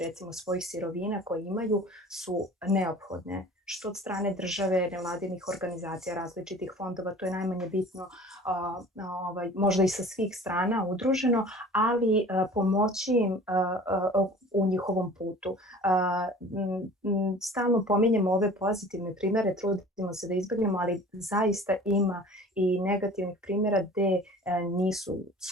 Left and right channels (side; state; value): both; normal; correlation 0.44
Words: recimo svojih sirovina koje imaju su neophodne, što od strane države, nevladinih organizacija, različitih fondova, to je najmanje bitno, možda i sa svih strana udruženo, ali pomoći im u njihovom putu. Stalno pominjemo ove pozitivne primere, trudimo se da izbjegnemo, ali zaista ima i negativnih primjera gde nisu